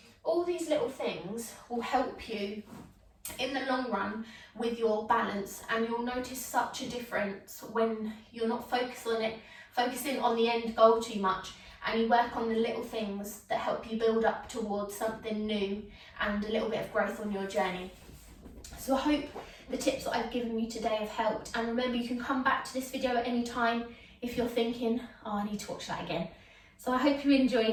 All these little things will help you in the long run with your balance, and you'll notice such a difference when you're not focusing on the end goal too much, and you work on the little things that help you build up towards something new and a little bit of growth on your journey. So I hope the tips that I've given you today have helped, and remember, you can come back to this video at any time if you're thinking, oh, I need to watch that again. So I hope you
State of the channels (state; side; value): identical; both; correlation 1.00